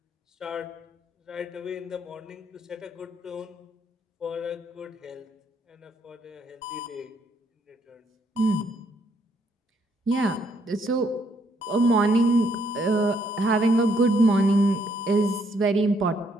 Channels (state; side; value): normal; both; correlation 0.71